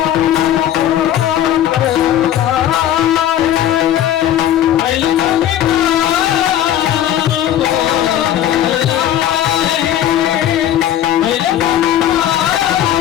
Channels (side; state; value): right; quieter; 11.5 dB